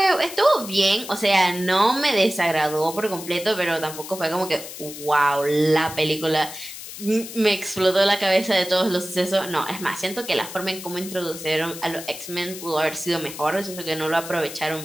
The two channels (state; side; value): noise; left; hiss, 12 dB below the sound